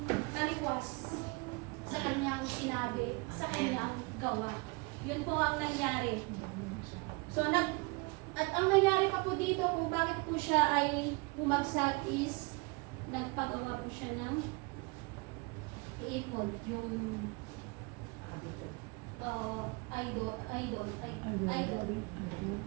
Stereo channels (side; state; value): left; quieter; 28.5 dB